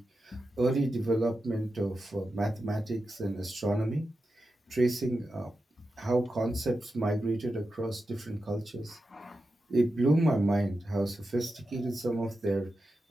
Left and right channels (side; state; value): both; normal; correlation 0.90